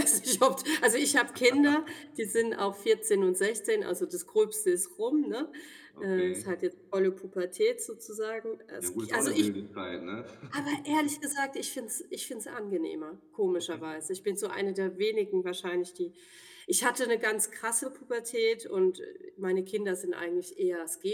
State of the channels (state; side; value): identical; both; correlation 1.00